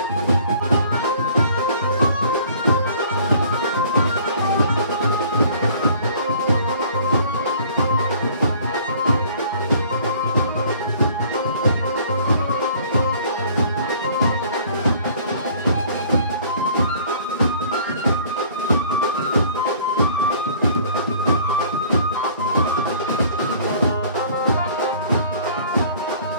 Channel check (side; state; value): both; inverted; correlation -0.53